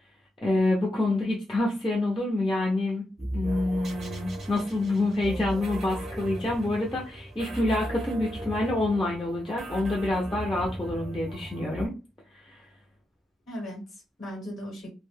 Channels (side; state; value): both; normal; correlation 0.86